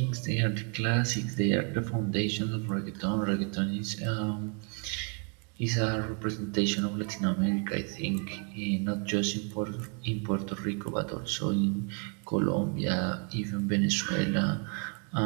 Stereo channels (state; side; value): quieter; left; 38.3 dB